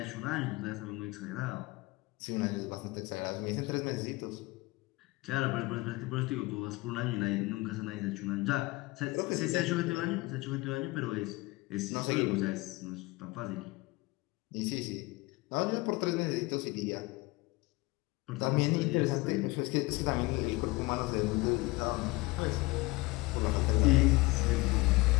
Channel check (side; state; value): right; quieter; 22.3 dB